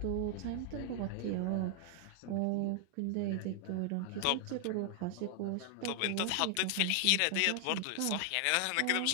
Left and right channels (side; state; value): both; different; correlation 0.00